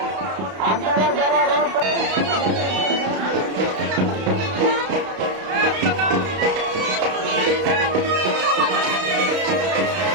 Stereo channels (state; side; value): late; left; 32 ms